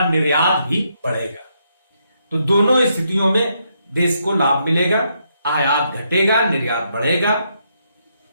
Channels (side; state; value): both; inverted; correlation -0.77